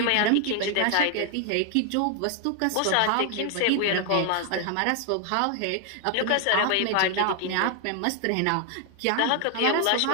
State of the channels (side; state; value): both; different; correlation 0.00